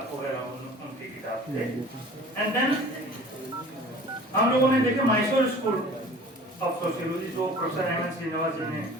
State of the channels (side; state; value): both; normal; correlation 0.44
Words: वगैरह उनकी किताब थे। एंड देन हम लोगों ने देखे मैसूर स्कूल ऑफ सोशियोलॉजी जो प्रोफेसर एम.एन. श्रीनिवास जी ने